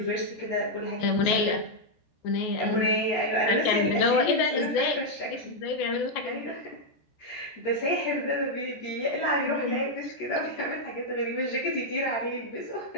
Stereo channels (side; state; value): right; late; 14 ms